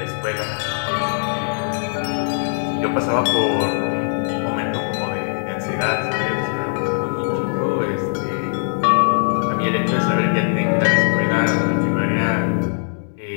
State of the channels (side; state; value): right; silent; digital silence